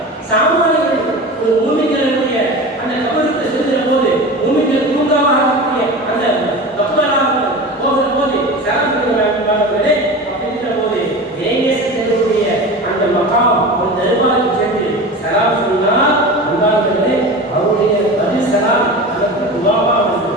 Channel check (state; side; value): normal; both; correlation 0.31